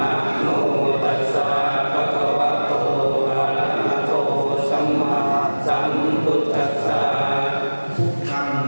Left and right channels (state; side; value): inverted; both; correlation -1.00